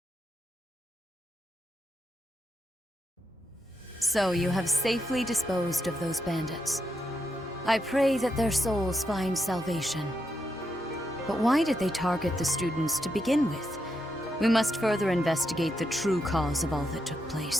So you have safely disposed of those bandits. I pray that their souls find salvation. But why did they target the students to begin with? We must further investigate the true cause of all that took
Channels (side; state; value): both; normal; correlation 0.82